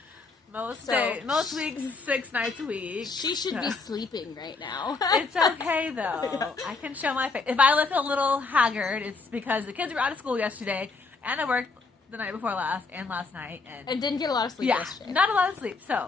Most weeks, 6 nights a week. She should be sleeping right now. It's okay, though. I can show my face. If I look a little haggard, it's because the kids were out of school yesterday, and I worked the night before last and last night. And didn't get a lot of sleep yesterday. Not a lot of sleep.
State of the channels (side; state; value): right; quieter; 4.2 dB